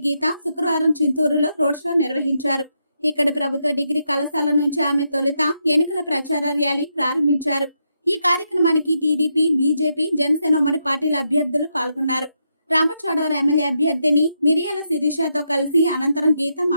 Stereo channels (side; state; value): both; inverted; correlation -0.81